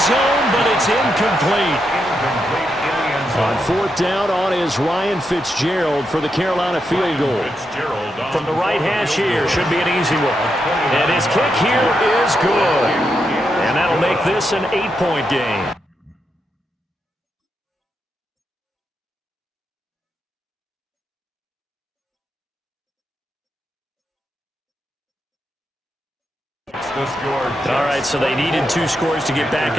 but it's incomplete. On 4th down on is Ryan Fitzgerald for the Carolina field goal. From the right hash here, should be an easy one. And his kick here is good. And that'll make this an 8-point game. All right, so they needed 2 scores to get back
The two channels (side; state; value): both; normal; correlation 0.83